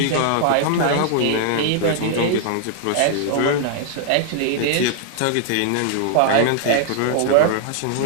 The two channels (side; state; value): both; different; correlation 0.00